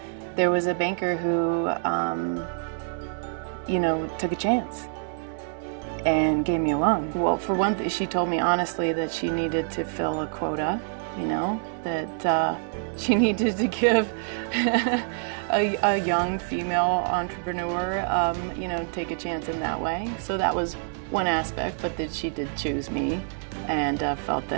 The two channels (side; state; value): left; silent; 61 dB below the other